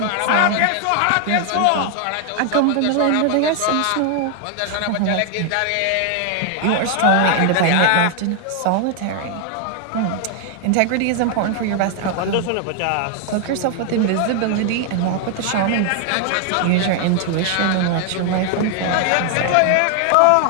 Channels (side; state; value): both; different; correlation 0.00